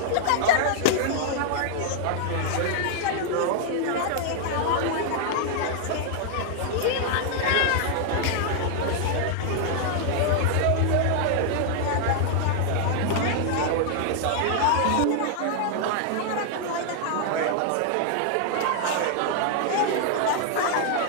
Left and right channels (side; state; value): both; different; correlation 0.00